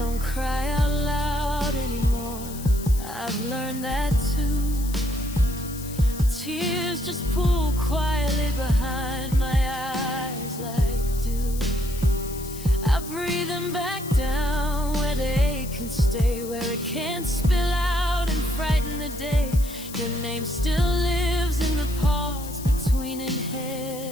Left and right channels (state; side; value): noise; left; hiss, 13 dB below the sound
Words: cry out loud anymore. I've learned that too. The tears just pool quietly behind my eyes like dew. I breathe them back down where they can stay, where it can't spill out and frighten the day. Your name still lives in the pause between